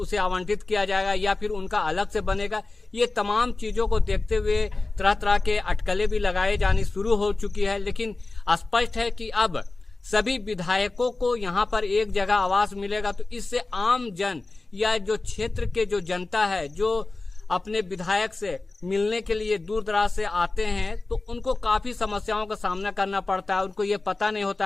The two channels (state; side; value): quieter; right; 3.3 dB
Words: आवंटित किया जाएगा, या फिर उनका अलग से बनेगा। ये तमाम चीजों को देखते हुए तरह तरह के अटकलें भी लगाए जानी शुरू हो चुकी है। लेकिन स्पष्ट है कि अब सभी विधायकों को यहाँ पर एक जगह आवास मिलेगा, तो इससे आम जन या जो क्षेत्र के जो जनता है, जो अपने विधायक से मिलने के लिए दूर दराज से आते हैं, तो उनको काफी समस्याओं का सामना करना पड़ता है। उनको ये पता नहीं होता